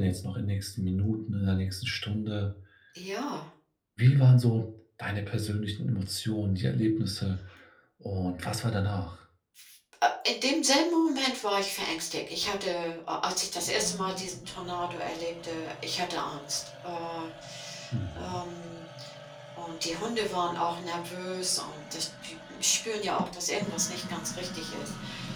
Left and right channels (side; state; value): both; identical; correlation 1.00